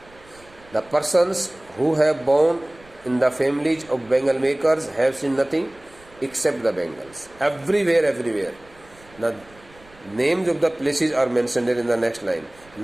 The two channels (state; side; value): noise; right; rumble, 26 dB below the sound